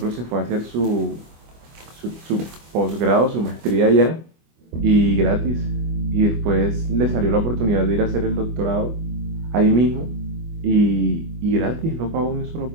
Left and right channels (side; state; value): left; late; 25 ms